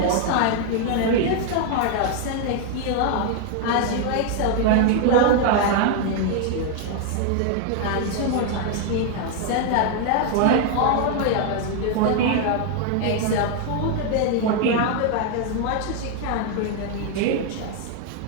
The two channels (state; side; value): different; both; correlation 0.00